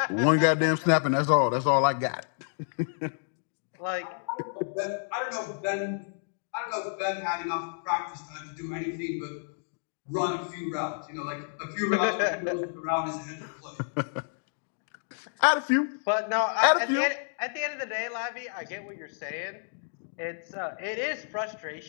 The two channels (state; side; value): silent; right; digital silence